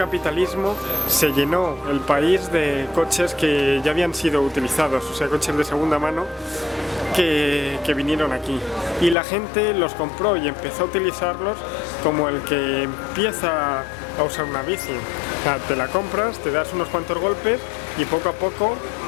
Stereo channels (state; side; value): drops out; right; at 9.2 s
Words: se llenó el país de coches que ya habían sido utilizados, o sea, coches de segunda mano que vinieron aquí. Y la gente los compró y empezó a utilizarlos como el que empieza a usar una bici. O sea, te la compras, te das unos cuantos golpes y poco a poco